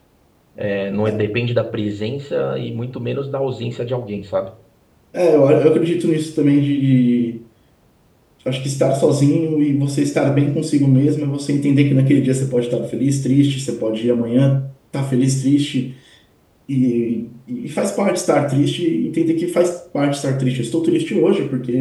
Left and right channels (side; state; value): both; identical; correlation 1.00